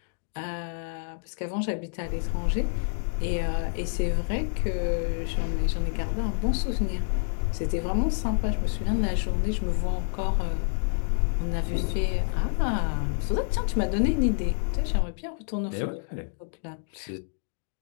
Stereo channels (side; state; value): right; silent; digital silence